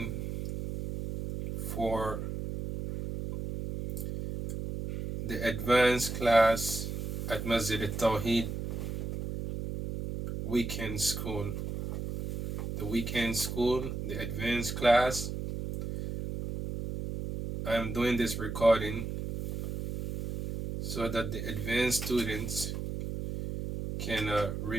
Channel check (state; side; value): noise; right; hum, 4 dB below the sound